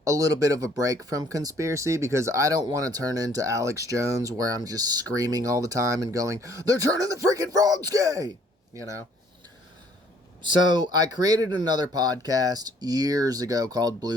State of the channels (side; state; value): both; normal; correlation 0.61